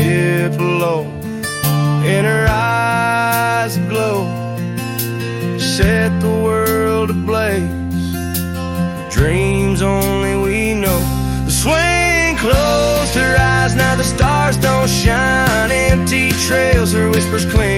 low, in her eyes aglow, set the world ablaze. Dreams only we know. The swing closed her eyes, now the stars don't shine. Empty trails, her whispers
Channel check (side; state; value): both; identical; correlation 1.00